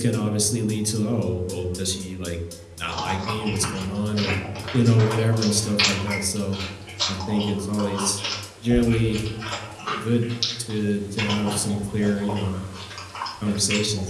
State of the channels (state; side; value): identical; both; correlation 1.00